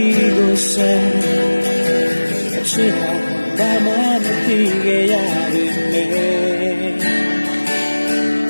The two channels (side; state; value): both; inverted; correlation -1.00